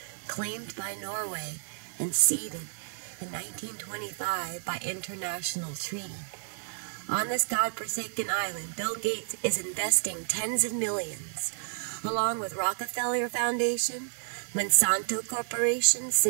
claimed by Norway and ceded in 1925 by international treaty. On this godforsaken island, Bill Gates is investing tens of millions, along with Rockefeller Foundation, Monsanto Corporation,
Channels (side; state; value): left; silent; digital silence